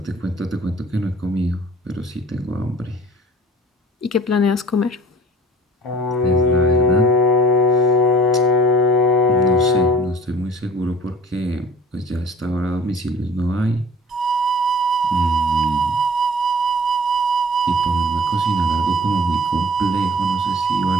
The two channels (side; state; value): both; normal; correlation 0.47